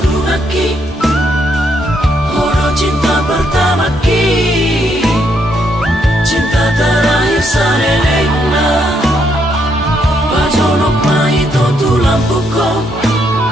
laki horo cinta pertama ki cinta terakhir sarelena bajonok maito tulang puko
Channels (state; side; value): normal; both; correlation 0.75